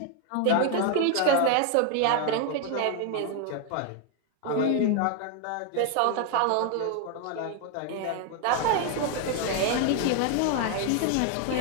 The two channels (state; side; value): different; both; correlation 0.01